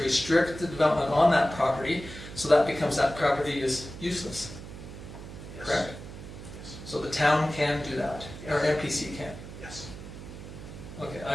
restrict the development on that property, so that property is useless, Yes. correct? Yes. So the town can do that, or MPC can. Yes. Okay,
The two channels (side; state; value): right; noise; hum, 13 dB below the sound